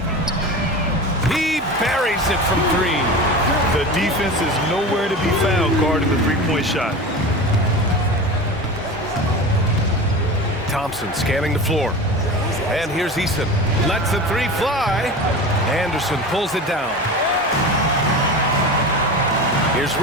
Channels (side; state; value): both; normal; correlation 0.30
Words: He buries it from 3. The defense is nowhere to be found guarding the three-point shot. Thompson scanning the floor. And here's Eason. Lets the 3 fly. Anderson pulls it down. Here's